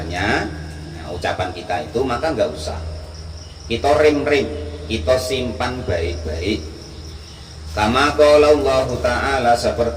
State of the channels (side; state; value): both; identical; correlation 1.00